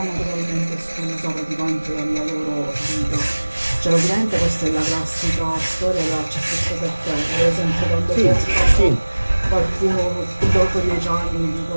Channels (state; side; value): inverted; both; correlation -1.00